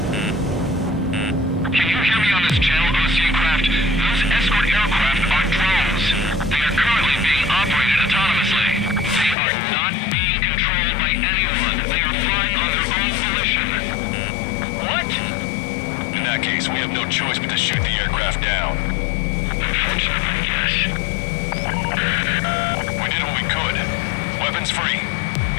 Can you hear me on this channel, Osean craft? Those escort aircraft are drones. They are currently being operated autonomously. They are not being controlled by anyone. They are flying on their own volition. What? In that case, we have no choice but to shoot the aircraft down. Unfortunately, yes. We did what we could. Weapons free.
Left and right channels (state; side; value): drops out; right; at 9.3 s